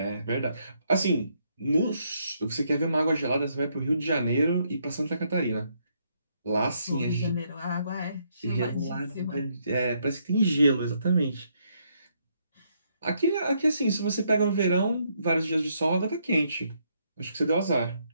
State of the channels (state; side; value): inverted; both; correlation -0.74